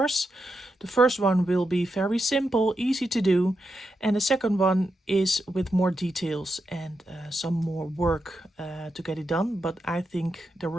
The first one will be very simple, easy to do, and the second one is with more details and some more work to get it done. But I think the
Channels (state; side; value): normal; both; correlation 0.86